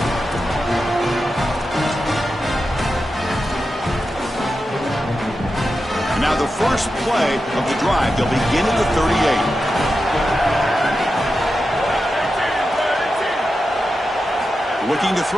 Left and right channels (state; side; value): normal; both; correlation 0.90